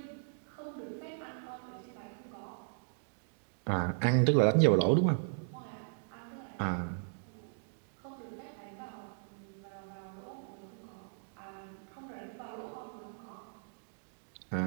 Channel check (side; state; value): left; silent; digital silence